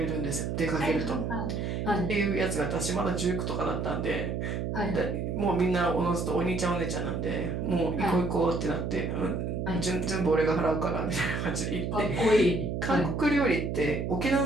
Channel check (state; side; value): noise; right; hum, 2 dB below the sound